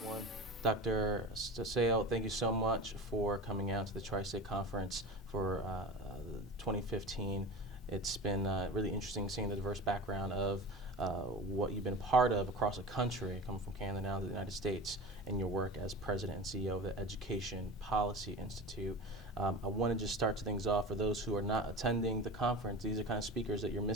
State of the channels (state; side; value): normal; both; correlation 0.31